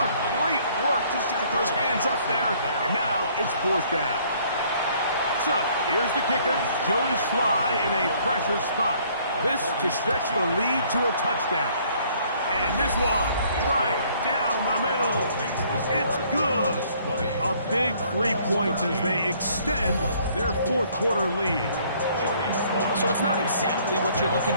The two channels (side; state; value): both; inverted; correlation -0.61